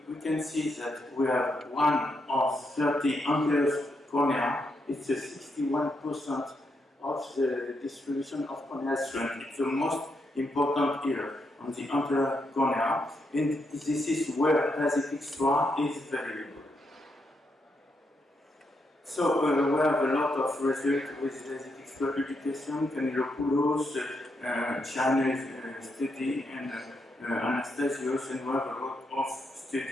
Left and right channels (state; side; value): normal; both; correlation 0.81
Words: can see that we have 1 of 30 anterior cornea. It's 61% of the distribution of corneal strength. It's the most important here on the anterior cornea, and this is where Lasik Xtra is valuable. So we have a lot of results with Lasik Xtra publication, Canelopoulos, Chinese study, and Anastasios, and we have a lot of